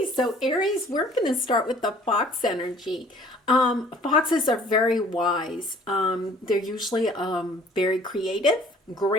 so Aries, we're going to start with the fox energy. Foxes are very wise. They're usually very creative,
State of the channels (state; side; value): normal; both; correlation 0.54